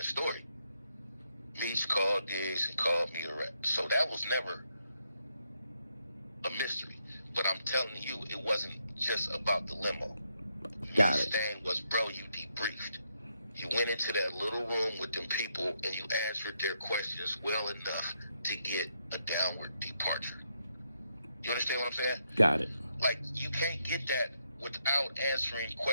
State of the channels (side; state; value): both; inverted; correlation -0.79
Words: story. Meech called Diggs and called me a rep. So that was never a mystery. But I'm telling you, it wasn't just about the limo. Got Meech's it. thing was, bro, you debriefed. You went into that little room with them people and you answered their questions well enough to get a downward departure. You understand what I'm saying? Got it. Like, you can't get that without answering